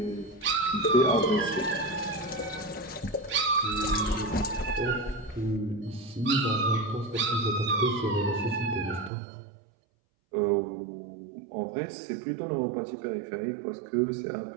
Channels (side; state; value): left; drops out; at 9.1 s